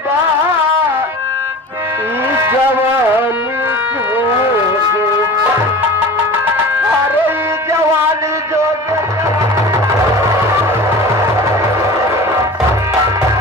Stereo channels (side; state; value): both; normal; correlation 0.37